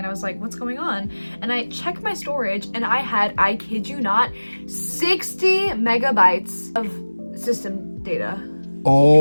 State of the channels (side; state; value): both; inverted; correlation -1.00